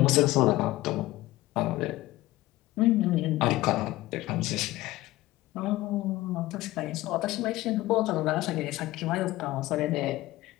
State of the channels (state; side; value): quieter; right; 17.7 dB